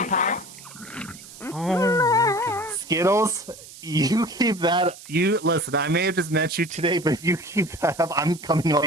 Oh Skittles, you keep that. You listen. I may have just met you today, but you keep that up. I'm coming on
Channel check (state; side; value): noise; right; hiss, 17 dB below the sound